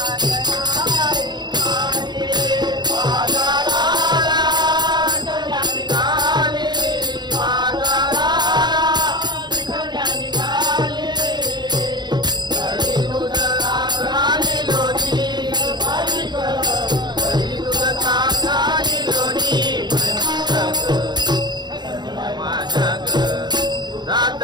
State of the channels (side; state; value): left; late; 0.21 ms